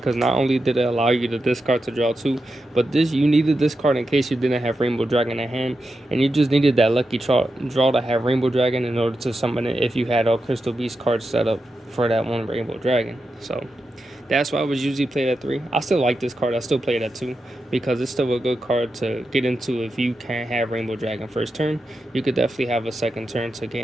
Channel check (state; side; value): normal; both; correlation 0.88